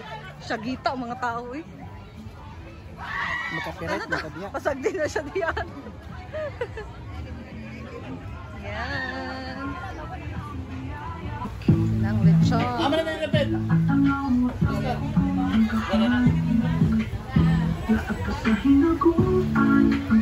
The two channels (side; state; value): both; identical; correlation 1.00